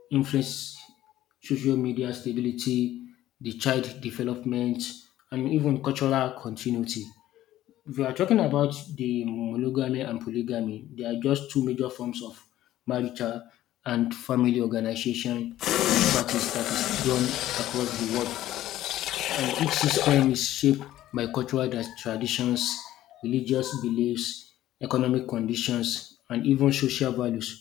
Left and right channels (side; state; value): right; quieter; 13.9 dB